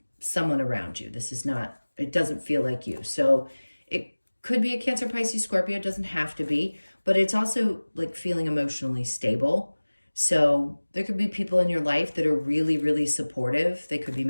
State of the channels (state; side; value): inverted; both; correlation -1.00